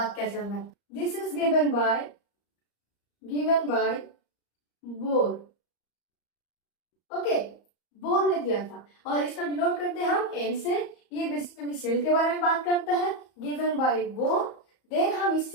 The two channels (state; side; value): late; right; 34 ms